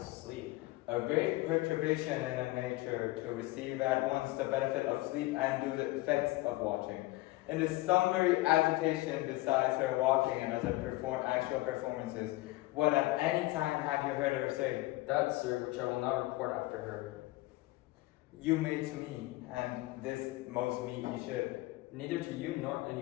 sleep. A great perturbation in a nature to receive at once the benefit of sleep and do the effects of watching. In this summary agitation besides her walking and other actual performances, what at any time have you heard her say? That, sir, which I will not report after her. You may to me, and this most meet ye should. Neither to you nor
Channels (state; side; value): quieter; right; 19.7 dB